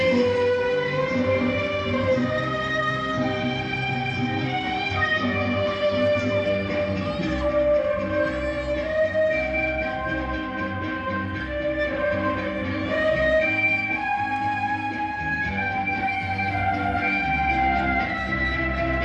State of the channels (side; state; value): both; identical; correlation 1.00